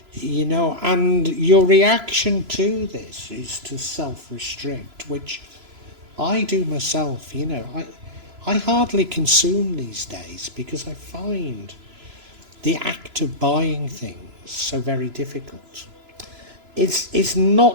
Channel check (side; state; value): left; late; 3.0 ms